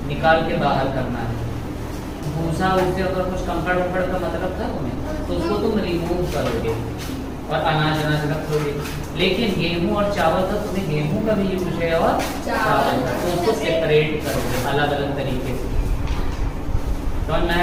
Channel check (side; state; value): both; identical; correlation 1.00